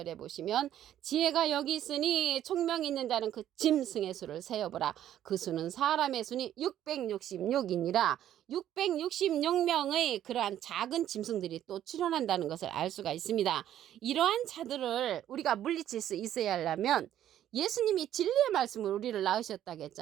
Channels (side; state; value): left; quieter; 11.4 dB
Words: 보시면 지혜가 여기 있으니 총명 있는 자는 그 짐승의 수를 세어보라. 그 수는 사람의 수니 666이니라. 666명의 그러한 작은 짐승들이 또 출현한다는 것을 알 수가 있습니다. 이러한 자들을 우리가 물리칠 수 있어야 하려면 예수님이 진리의 말씀을 우리를 낳으셨다고